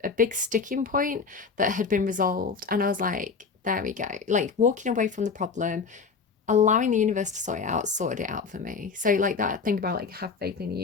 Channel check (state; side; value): quieter; right; 5.1 dB